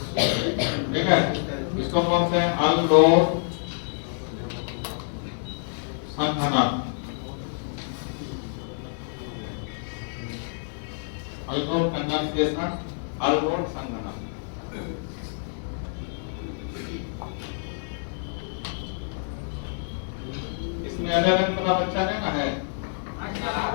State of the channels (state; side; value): silent; right; digital silence